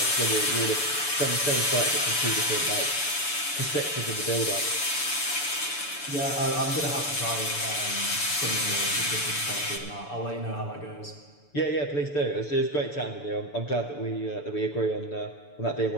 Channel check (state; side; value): late; right; 6.9 ms